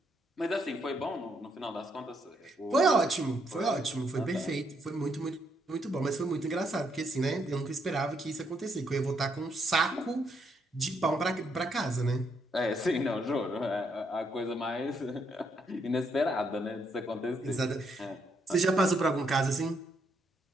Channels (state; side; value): normal; both; correlation 0.75